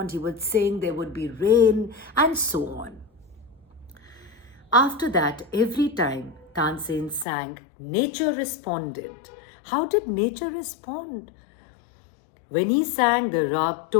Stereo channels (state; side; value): drops out; right; at 7.2 s